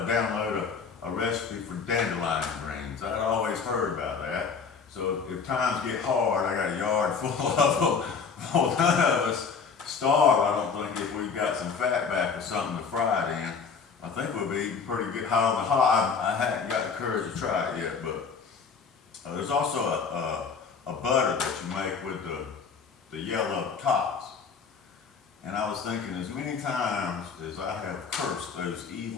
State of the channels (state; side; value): quieter; right; 5.6 dB